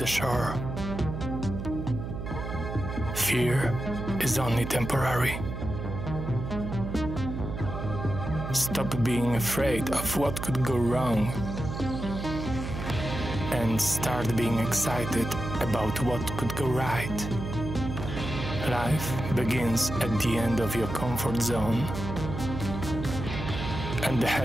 shore. Fear is only temporary. Stop being afraid of what could go wrong and start being excited about what could go right. Life begins at the end of your comfort zone, and the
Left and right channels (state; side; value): noise; right; hum, 6 dB below the sound